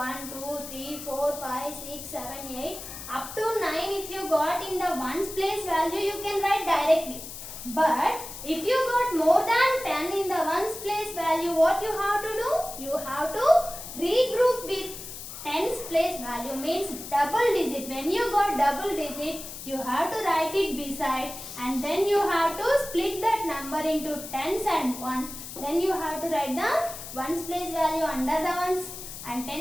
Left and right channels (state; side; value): noise; left; hiss, 11 dB below the sound